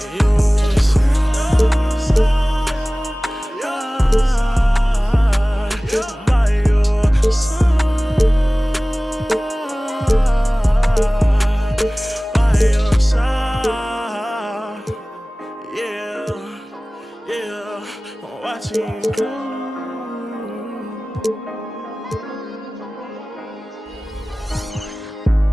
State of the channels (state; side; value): normal; both; correlation 0.98